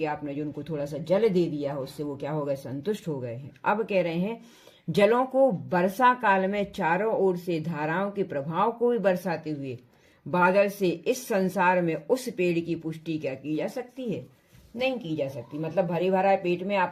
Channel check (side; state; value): both; identical; correlation 1.00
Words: आपने जो उनको थोड़ा सा जल दे दिया है, उससे वो क्या हो गए, संतुष्ट हो गए हैं। अब कह रहे हैं जलों को वर्षा काल में चारों ओर से धाराओं के प्रभाव को भी बरसाते हुए बादल से इस संसार में उस पेड़ की पुष्टि क्या की जा सकती है, नहीं की जा सकती। मतलब भरे भरा पेट में